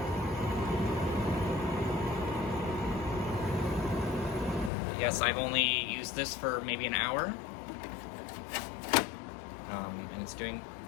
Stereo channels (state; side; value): drops out; right; at 4.7 s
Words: Yes, I've only used this for maybe an hour. And